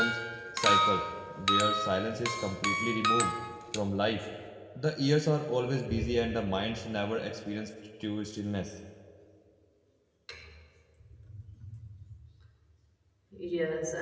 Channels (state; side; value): identical; both; correlation 1.00